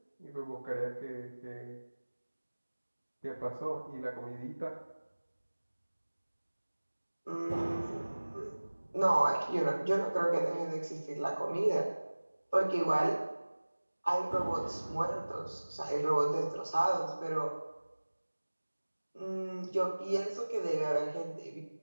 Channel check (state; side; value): inverted; both; correlation -1.00